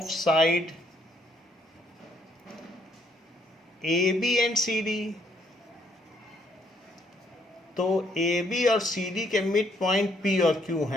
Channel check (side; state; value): both; normal; correlation 0.69